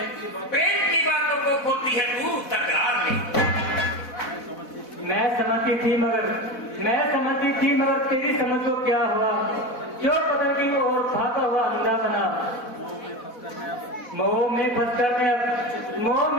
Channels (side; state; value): right; late; 4.1 ms